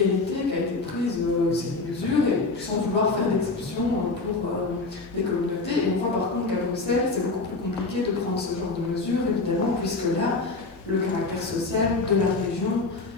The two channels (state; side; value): quieter; right; 3.6 dB